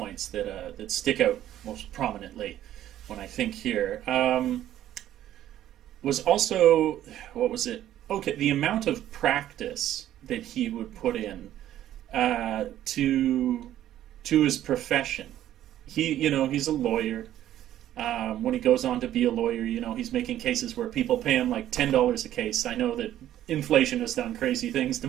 that stick out most prominently when I think here, was also, what was it? Okay, the amount of practice that he would put in to his profession. He's a lawyer. When he goes on to be a lawyer, he's making cases where people pay him like $10 a case. I know that inflation has done crazy things to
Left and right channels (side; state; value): left; quieter; 12.4 dB